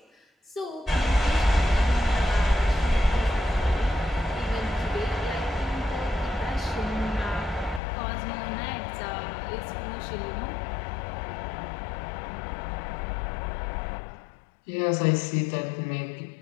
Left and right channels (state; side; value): drops out; right; at 7.8 s